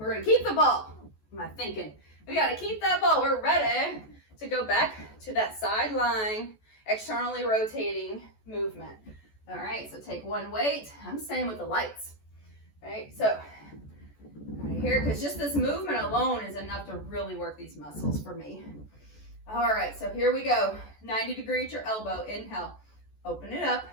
going to keep the ball. What am I thinking? We got to keep that ball. We're ready to go back to that sideline, externally rotating movement. All right, so take 1 weight. I'm staying with the lights. All right, so right here, because just this movement alone is enough to really work these muscles for me. All right, so here we go. 90 degree at your elbow. Inhale. Open it up.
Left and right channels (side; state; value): right; late; 14 ms